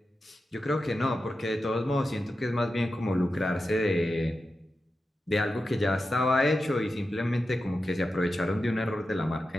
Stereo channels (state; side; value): normal; both; correlation 0.91